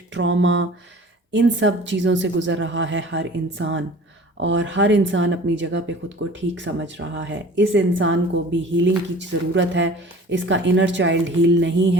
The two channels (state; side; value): normal; both; correlation 0.44